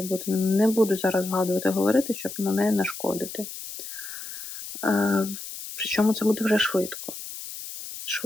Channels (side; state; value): left; noise; hiss, 10 dB below the sound